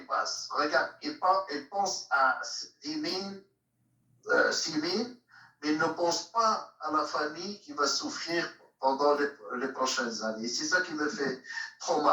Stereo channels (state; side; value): identical; both; correlation 1.00